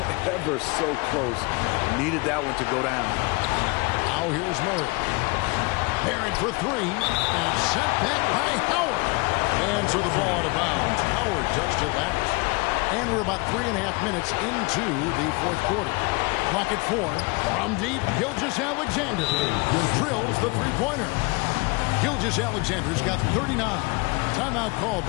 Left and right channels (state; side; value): quieter; right; 27.3 dB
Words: Ever so close. Needed that one to go down. Now here's Murray. Barrett for 3. And sent back by Howard. And so the ball out of bounds. Howard touched it last. And we're about 3.5 minutes into the fourth quarter. Clock at 4. From deep, Gilgeous-Alexander, who drills the three-pointer. Gilgeous-Alexander's got 39. Timeout called